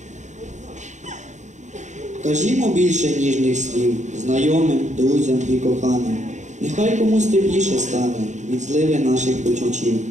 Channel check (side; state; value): left; late; 0.34 ms